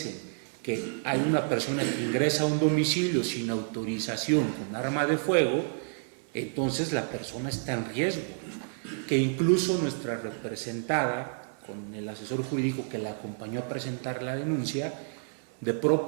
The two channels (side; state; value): left; silent; digital silence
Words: que hay una persona que ingresa a un domicilio sin autorización con arma de fuego, entonces la persona está en riesgo, que incluso nuestra representada, con el asesor jurídico que la acompañó a presentar la denuncia, de